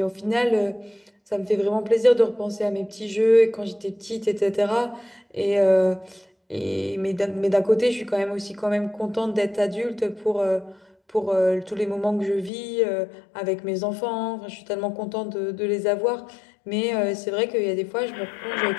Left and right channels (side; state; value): right; drops out; at 12.5 s